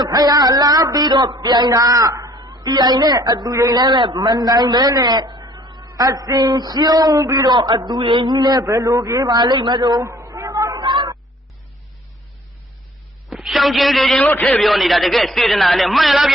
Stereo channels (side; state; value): both; normal; correlation 0.56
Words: ဘုရားလာပြီးတော့ပြိုင်တာပြိုင်နဲ့အတူရင်လည်းမနိုင်ပဲနဲ့အစင်ရှုံးပြီးတော့အတူရင်ကြီးလည်းဘယ်လိုပြေးပါလိမ့်မလို့ရှောင်းချင်းလေးချင်းလို့ထည့်ပြောနေတာတကယ်စေတနာနဲ့မှန်လားပြ